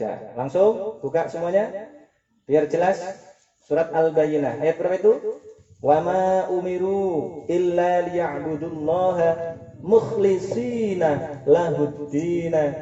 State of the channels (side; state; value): both; identical; correlation 1.00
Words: Langsung buka semuanya biar jelas. Surat Al-Bayyinah ayat berapa itu? Wa ma umiru illa liya'budullaha mukhlishina